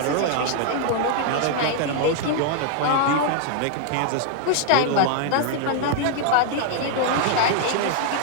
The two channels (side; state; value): both; different; correlation 0.00